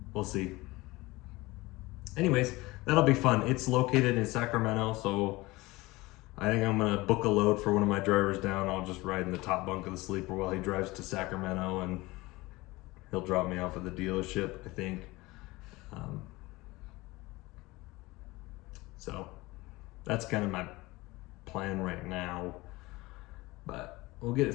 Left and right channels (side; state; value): right; quieter; 21.1 dB